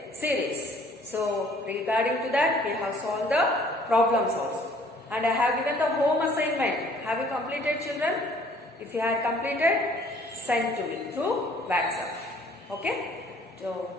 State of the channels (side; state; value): both; normal; correlation 0.57